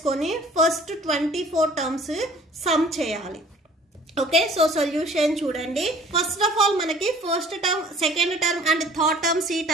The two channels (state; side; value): normal; both; correlation 0.52